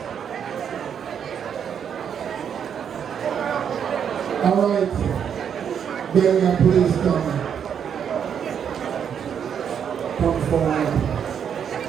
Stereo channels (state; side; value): quieter; left; 8.0 dB